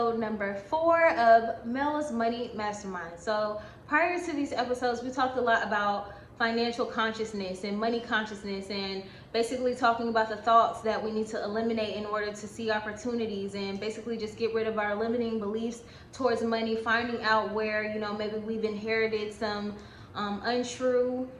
number 4 of Mel's Money Mastermind. So prior to these episodes, we talked a lot about financial consciousness and money consciousness, and basically talking about the thoughts that we need to eliminate in order to see opportunities, and basically just get rid of our limiting beliefs towards money, finding out where, maybe we've inherited some untrue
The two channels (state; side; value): identical; both; correlation 1.00